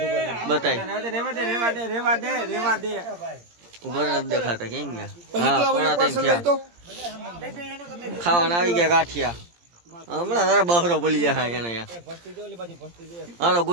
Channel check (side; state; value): left; late; 17 ms